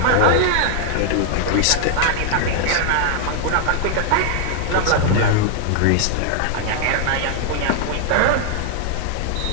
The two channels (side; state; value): both; different; correlation 0.00